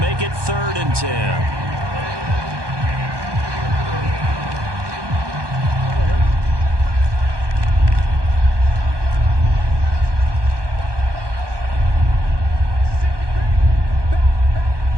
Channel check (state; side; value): late; left; 1.2 ms